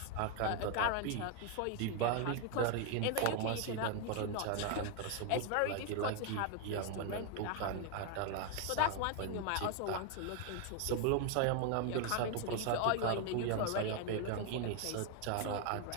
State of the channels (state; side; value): different; both; correlation 0.01